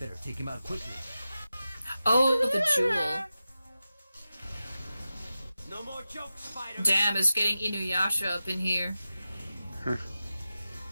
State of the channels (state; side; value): inverted; both; correlation -0.93